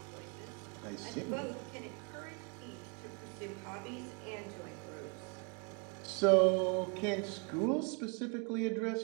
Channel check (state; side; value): quieter; left; 35.4 dB